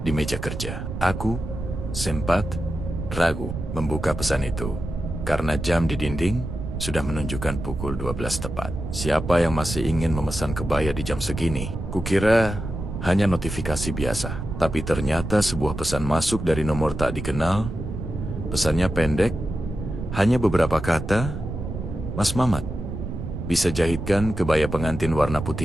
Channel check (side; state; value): right; noise; rumble, 6 dB below the sound